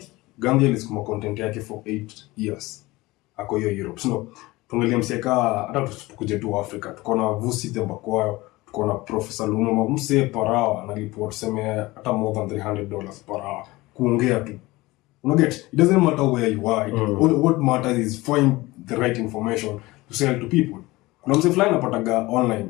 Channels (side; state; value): right; quieter; 20.4 dB